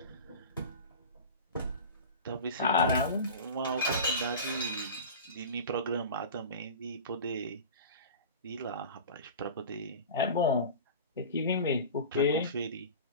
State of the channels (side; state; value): both; inverted; correlation -0.33